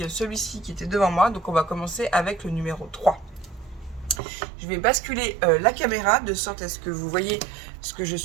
celui-ci qui était devant moi. Donc on va commencer avec le numéro 3. Je vais basculer la caméra de sorte à ce que vous voyez ce que je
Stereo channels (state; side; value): drops out; left; at 4.2 s